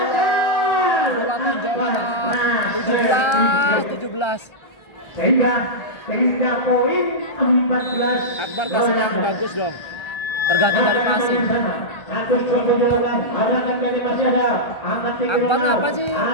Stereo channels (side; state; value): right; late; 1.3 ms